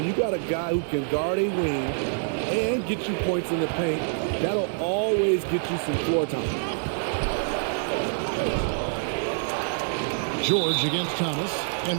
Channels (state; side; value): silent; left; 57 dB below the other